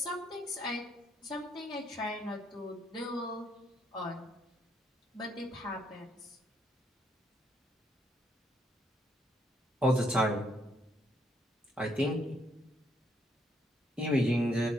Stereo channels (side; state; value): both; normal; correlation 0.72